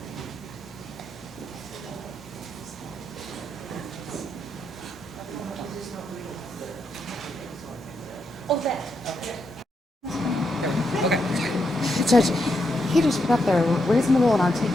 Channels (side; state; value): both; normal; correlation 0.81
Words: Oh, that, okay. Judge, he just put up there reasonable and